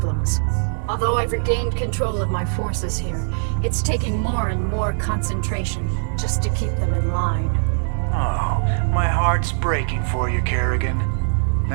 Although I've regained control of my forces here, it's taking more and more concentration just to keep them in line. Oh, my heart's breaking for you, Kerrigan.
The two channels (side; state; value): left; silent; digital silence